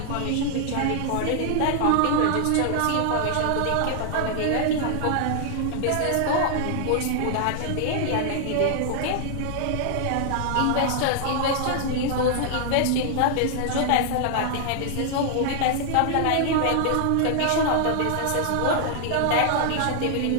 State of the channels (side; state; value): both; different; correlation 0.00